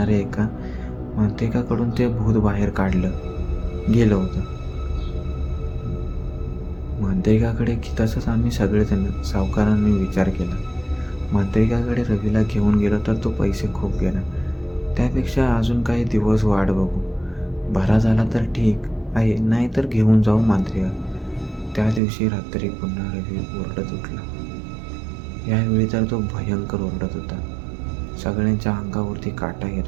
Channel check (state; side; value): drops out; left; at 22.0 s